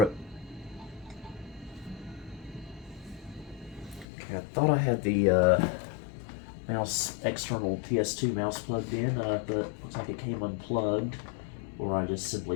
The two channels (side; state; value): right; drops out; at 4.0 s